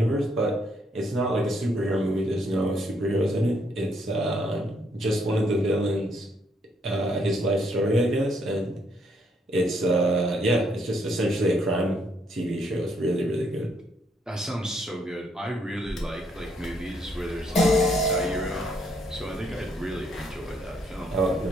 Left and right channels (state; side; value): normal; both; correlation 0.71